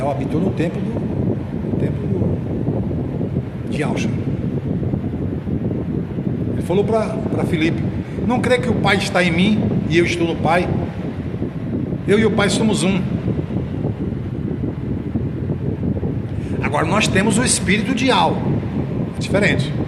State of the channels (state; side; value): identical; both; correlation 1.00